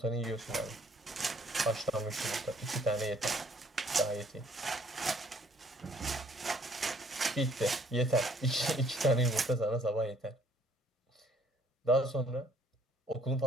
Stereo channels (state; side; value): normal; both; correlation 0.62